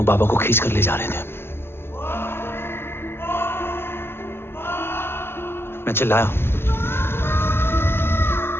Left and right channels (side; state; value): right; late; 0.11 ms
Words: बाबा को खींच कर ले जा रहे थे। मैं चिल्लाया,